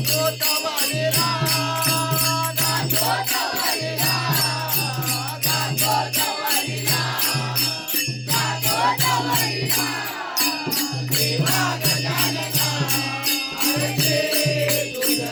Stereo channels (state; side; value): identical; both; correlation 1.00